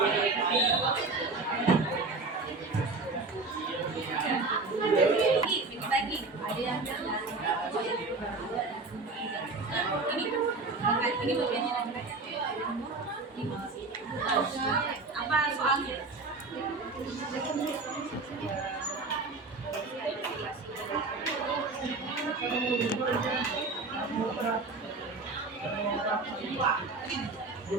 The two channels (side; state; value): left; quieter; 3.6 dB